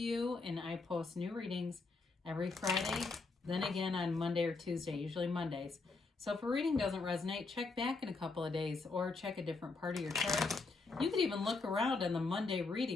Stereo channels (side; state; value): right; quieter; 3.9 dB